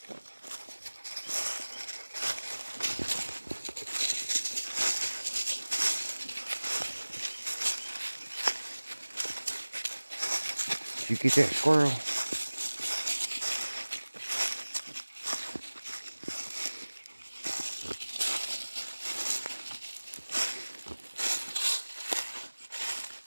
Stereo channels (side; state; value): both; inverted; correlation -1.00